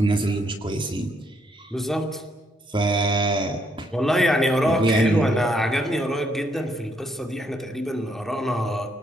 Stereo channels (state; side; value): normal; both; correlation 0.73